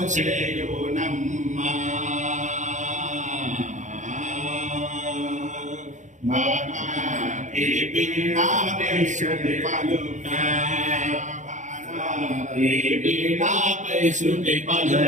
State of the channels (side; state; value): left; late; 0.35 ms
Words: చేయునమ్మ. ఈ వీణాపైశ్రుతి పలుక, ఈ వీణాపైశ్రుతి